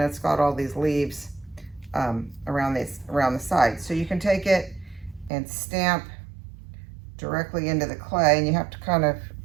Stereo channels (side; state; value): left; drops out; at 5.3 s